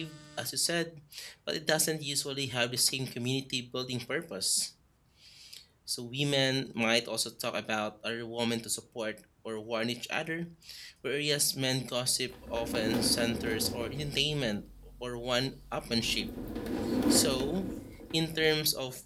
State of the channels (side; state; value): both; identical; correlation 1.00